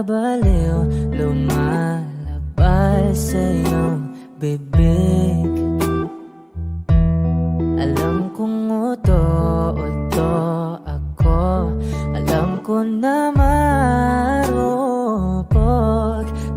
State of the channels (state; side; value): identical; both; correlation 1.00